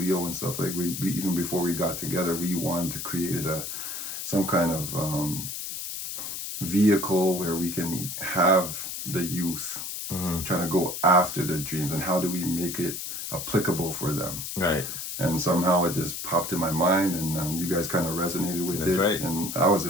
and stuff, like we even before we got together, we wanted to create some kind of vehicle where we can have the youth trying to go after their dreams, and how do we make it applicable for them, right? And somehow it just popped in my mind, and you guys kind of resonated with That's it, right. And I was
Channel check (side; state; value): left; noise; hiss, 6 dB below the sound